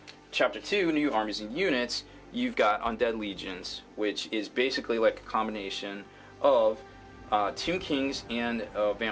Chapter 2, New Armies and Units. You've got Undead Legions, which is basically like a combination of Tomb Kings and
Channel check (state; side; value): identical; both; correlation 1.00